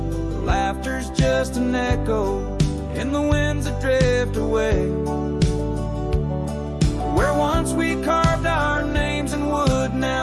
Laughter's just an echo in the winds that drift away. Where once we carved our names in wood wood,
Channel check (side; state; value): both; identical; correlation 1.00